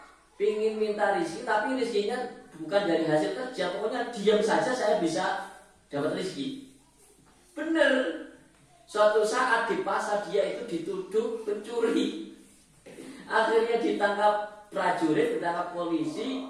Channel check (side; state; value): both; identical; correlation 1.00